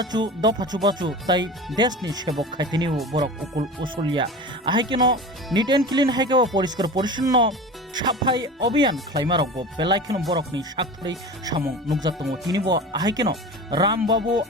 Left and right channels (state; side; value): normal; both; correlation 0.33